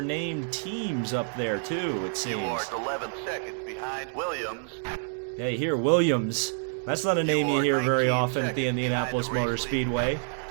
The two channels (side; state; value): left; silent; digital silence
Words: teams up there too, it seems. You are 11 seconds behind Williams. Yeah, you hear Williams. That's not a name you hear very often at the Indianapolis Motor Speedway.